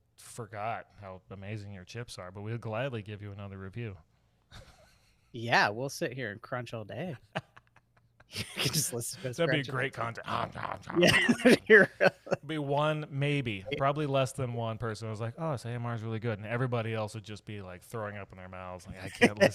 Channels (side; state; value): both; identical; correlation 1.00